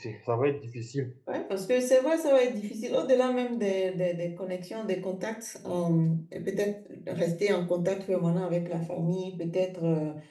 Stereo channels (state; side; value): identical; both; correlation 1.00